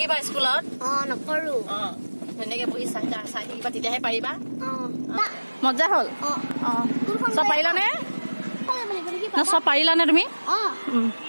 স্কুলত। নকৰোঁ। ধুনীয়াকৈ বহি চাই থাকিবা, তেতিয়াহে পাৰিবা। মজা হ'ল। চব পাৰিলানে? চব পাৰিলানে তুমি?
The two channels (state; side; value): inverted; both; correlation -1.00